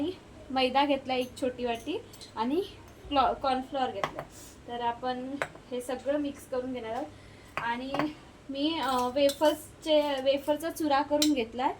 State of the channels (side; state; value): both; identical; correlation 1.00